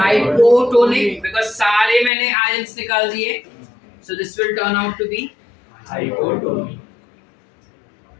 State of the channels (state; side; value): drops out; right; at 2.1 s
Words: बिकॉज़ सारे मैंने आयंस निकाल दिए। So this will turn out to be hypotonic.